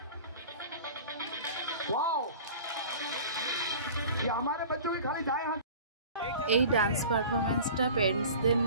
এই ডান্স পারফরমেন্সটা পেরেন্টসদের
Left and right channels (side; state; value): both; inverted; correlation -0.40